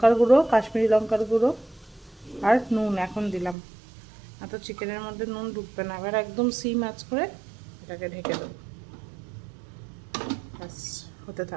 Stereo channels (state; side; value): drops out; left; at 3.6 s